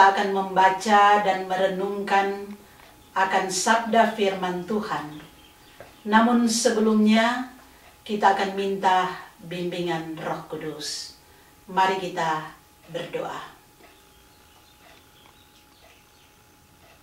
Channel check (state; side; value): identical; both; correlation 1.00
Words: akan membaca dan merenungkan akan sabda firman Tuhan. Namun sebelumnya kita akan minta bimbingan Roh Kudus. Mari kita berdoa.